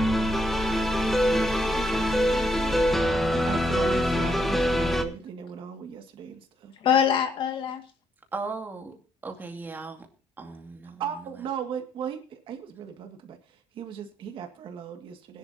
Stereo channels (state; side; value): normal; both; correlation 0.75